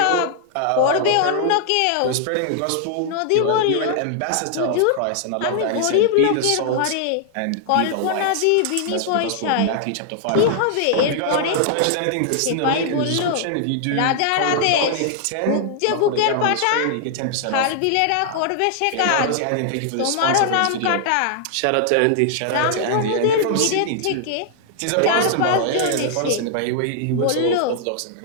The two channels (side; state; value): both; different; correlation -0.01